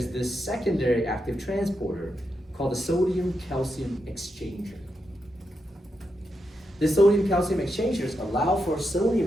this secondary active transporter called the sodium-calcium exchanger. The sodium-calcium exchangers allow for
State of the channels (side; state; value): both; normal; correlation 0.85